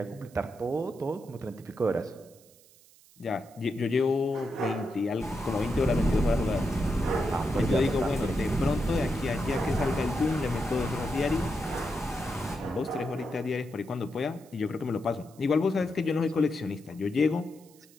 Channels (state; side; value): noise; right; hiss, 26 dB below the sound